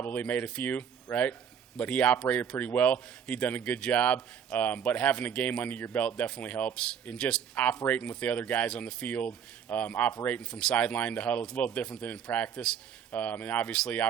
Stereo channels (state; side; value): quieter; left; 8.0 dB